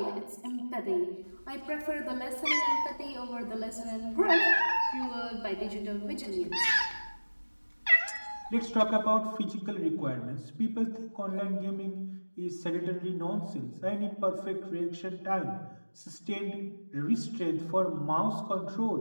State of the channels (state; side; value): inverted; both; correlation -1.00